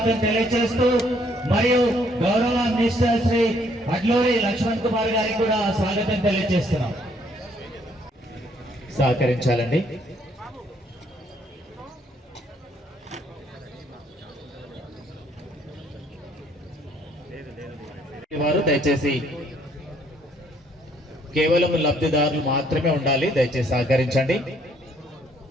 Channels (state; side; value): normal; both; correlation 0.66